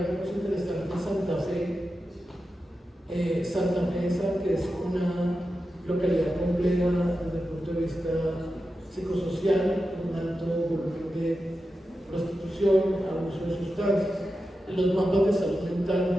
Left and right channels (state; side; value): normal; both; correlation 0.91